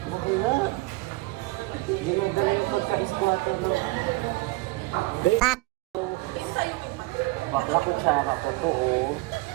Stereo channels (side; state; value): left; quieter; 22.5 dB